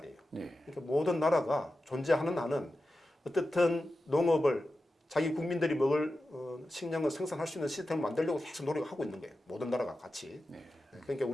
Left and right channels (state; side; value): normal; both; correlation 0.92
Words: 그러니까 모든 나라가 존재하는 한은 어떻든 농업을 자기 국민들이 먹을 식량을 생산할 수 있는 시스템을 만들려고 계속 노력을 하고 있는 거예요. 모든 나라가 같이. 그러니까